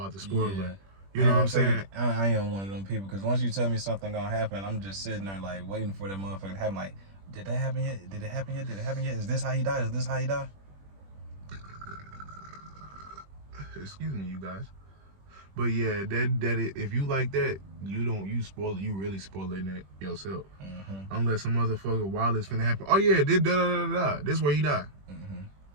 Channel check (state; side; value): late; left; 21 ms